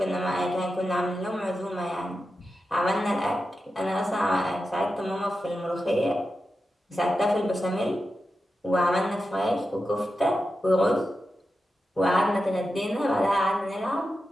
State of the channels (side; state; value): both; normal; correlation 0.91